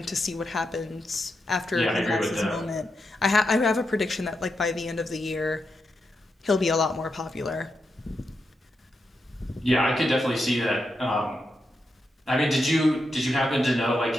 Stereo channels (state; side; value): normal; both; correlation 0.85